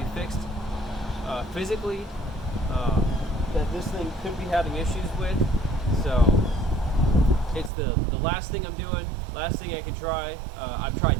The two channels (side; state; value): left; drops out; at 7.7 s